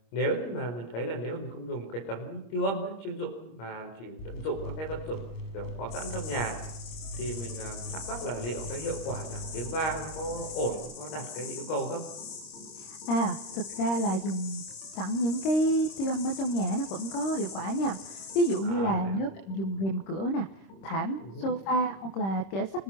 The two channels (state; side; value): late; right; 26 ms